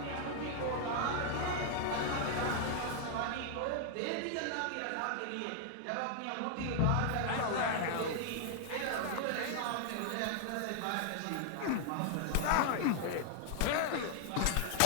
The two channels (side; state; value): both; different; correlation 0.00